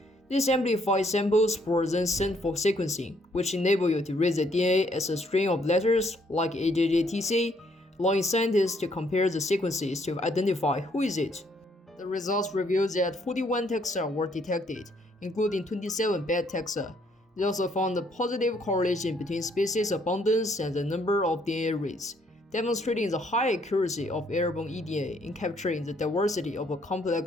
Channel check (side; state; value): both; normal; correlation 0.68